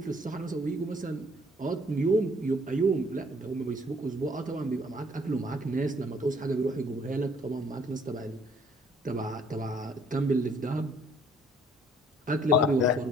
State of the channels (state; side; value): normal; both; correlation 0.60